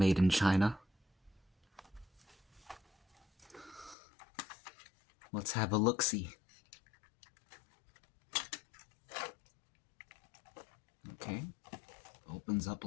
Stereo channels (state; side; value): drops out; right; at 4.0 s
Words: in China. Let's have a look-see. Okay, opens up